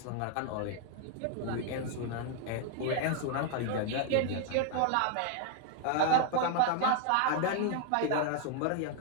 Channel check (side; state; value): both; different; correlation 0.00